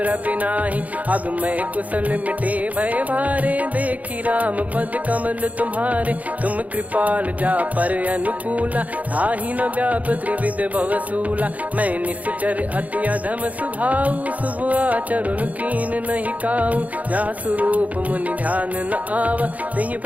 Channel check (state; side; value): late; left; 0.073 ms